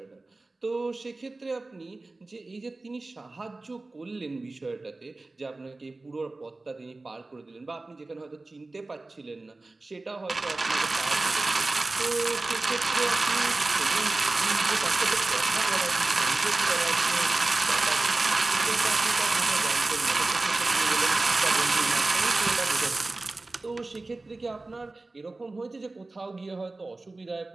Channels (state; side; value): quieter; left; 3.2 dB